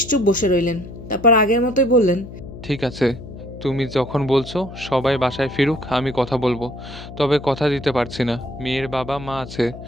বসে রইলেন। তারপর আগের মতোই বললেন, ঠিক আছে, তুমি যখন বলছো সবাই বাসায় ফিরুক আমি কথা বলবো, তবে কথা দিতে পারছি না, মেয়ের বাবা মা আছে,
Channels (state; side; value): noise; left; hum, 13 dB below the sound